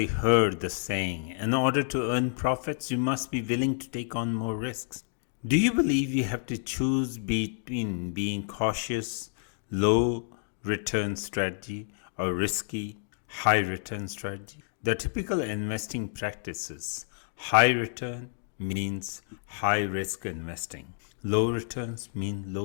heard the saying, in order to earn profits, you must be willing to take on more risks. Do you believe you have to choose between being cautious, low return strategy or risky, high return strategy? The typical investing practices: high return means high risk investing. Low returns mean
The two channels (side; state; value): right; silent; digital silence